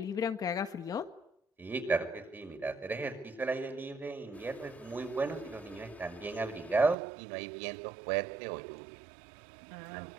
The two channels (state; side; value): drops out; left; at 7.0 s